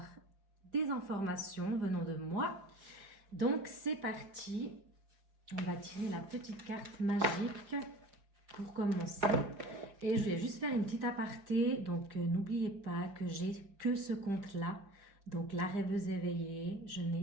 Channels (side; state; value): left; late; 5.1 ms